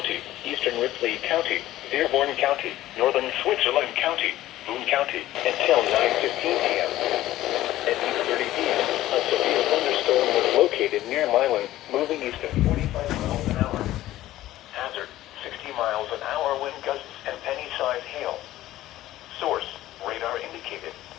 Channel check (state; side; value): quieter; right; 14.8 dB